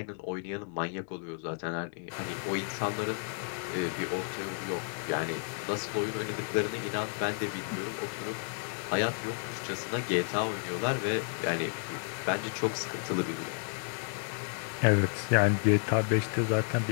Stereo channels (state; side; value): silent; right; 56 dB below the other